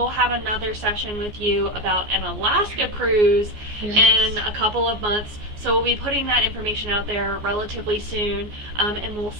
have another session with you about an Alaska cruise in a couple of months, so we'll be putting that information out there relatively soon, and we'll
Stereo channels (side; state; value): left; late; 14 ms